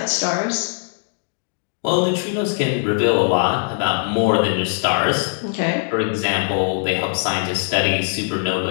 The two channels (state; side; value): silent; right; 59 dB below the other